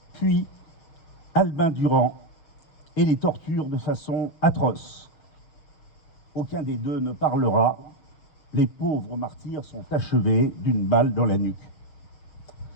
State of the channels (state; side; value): late; right; 6.8 ms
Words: puis Albin Durand, et les torturent de façon atroce. Aucun des deux ne parlera. Les pauvres martyrs sont achevés d'une balle dans la nuque.